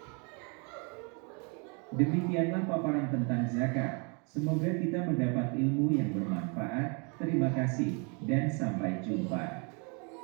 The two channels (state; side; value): quieter; left; 34.7 dB